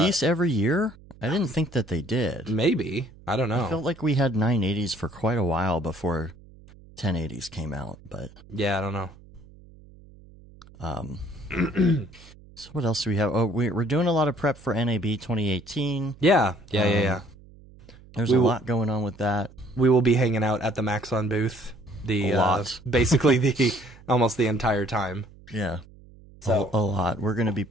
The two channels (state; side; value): noise; right; hum, 23 dB below the sound